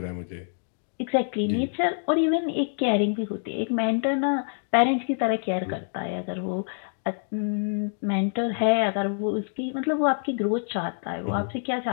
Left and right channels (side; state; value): right; silent; digital silence